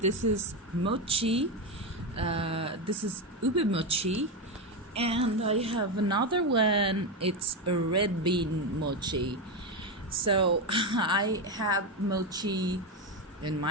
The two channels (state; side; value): normal; both; correlation 0.12